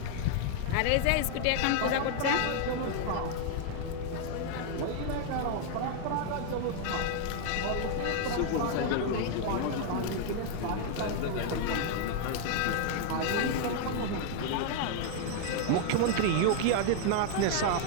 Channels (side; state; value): both; different; correlation 0.00